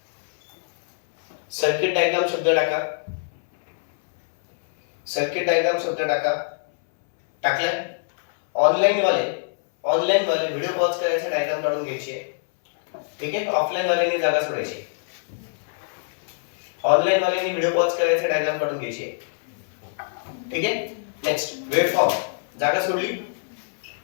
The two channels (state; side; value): silent; right; 63 dB below the other